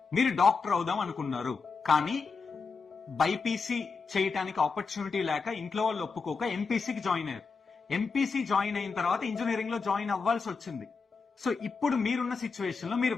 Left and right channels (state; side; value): quieter; right; 4.9 dB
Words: మీరు డాక్టర్ అవుదాం అనుకున్నారు, కానీ బైపీసీ చేయటానికి ఆపర్చునిటీ లేక ఇంట్లో వాళ్ళు ఒప్పుకోక ఎంపీసీకి జాయిన్ అయ్యారు. ఎంపీసీ జాయిన్ అయిన తర్వాత ఇంజనీరింగ్ లో జాయిన్ అవ్వాల్సి వచ్చింది. సో ఇప్పుడు మీరున్న సిచ్యువేషన్ లో మీరు